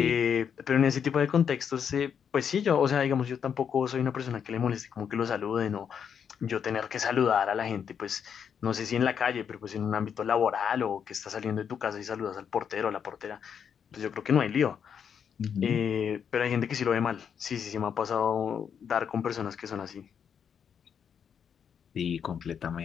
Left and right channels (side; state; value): right; quieter; 7.6 dB